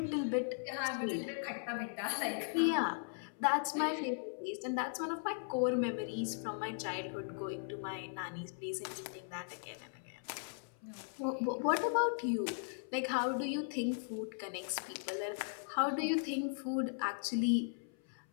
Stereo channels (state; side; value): silent; right; 52 dB below the other